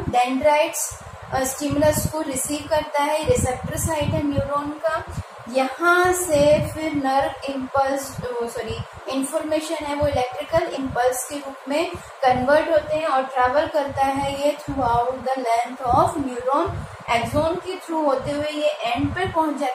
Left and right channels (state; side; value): identical; both; correlation 1.00